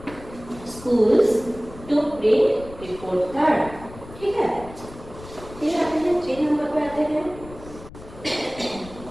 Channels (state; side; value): noise; left; rumble, 17 dB below the sound